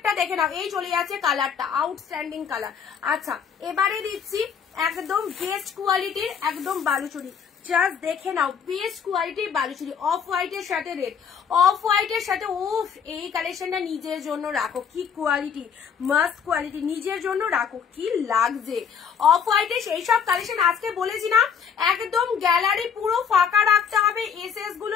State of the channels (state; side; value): quieter; right; 7.2 dB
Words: দেখে নাও। এই চলে যাচ্ছে কালারটা, আউটস্ট্যান্ডিং কালার। আচ্ছা এবারে দিচ্ছি একদম বেস্ট কোয়ালিটির একদম বালুচুরি, জাস্ট দেখে নাও বেস্ট কোয়ালিটির বালুচুরি, অফ হোয়াইটের সাথে রেড, অফ হোয়াইটের সাথে। উফ, এই কালেকশনটা নিজের জন্য রাখো, কি কোয়ালিটি, মাস্ট কোয়ালিটি, নিজের জন্য রাখো, কি লাগছে। অফ হোয়াইটের সেই সব কালেকশন আজকে বলেছি না, একদম গ্যালারি পুরো ফাঁকা রাখতে হবে এসএস